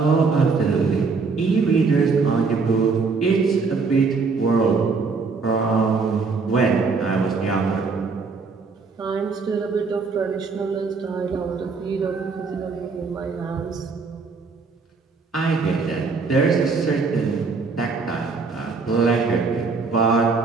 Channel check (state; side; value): quieter; left; 4.6 dB